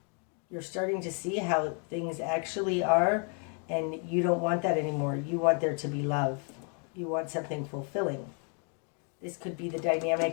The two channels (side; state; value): right; quieter; 39.2 dB